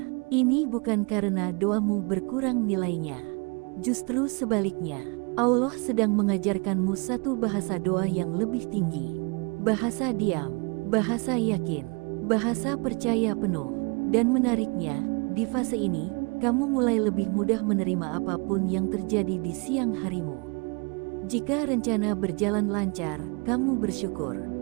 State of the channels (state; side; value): quieter; left; 32.2 dB